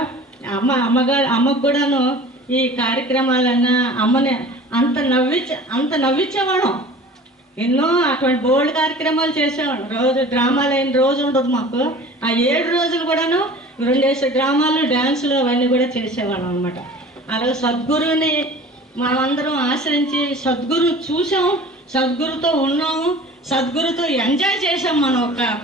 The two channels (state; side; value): normal; both; correlation 0.42